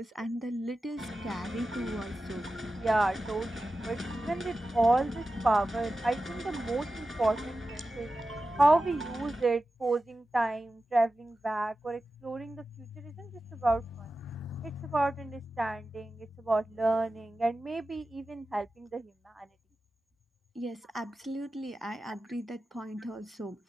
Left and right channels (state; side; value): normal; both; correlation 0.93